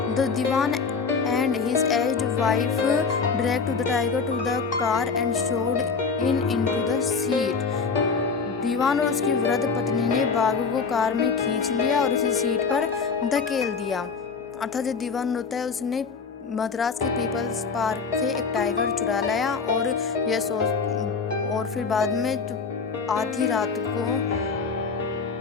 the Dewan and his aged wife dragged the tiger to the car and shoved into the seat। दीवान और उसकी वृद्ध पत्नी ने बाघ को कार में खींच लिया और उसे सीट पर धकेल दिया। अर्थात जो दीवान होता है उसने मद्रास के पीपल्स पार्क से एक टाइगर चुरा लाया और फिर बाद में आधी रात को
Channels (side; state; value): right; quieter; 5.1 dB